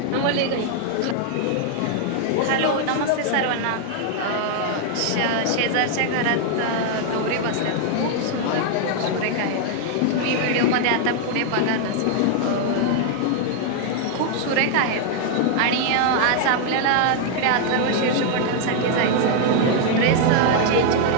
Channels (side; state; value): both; different; correlation 0.00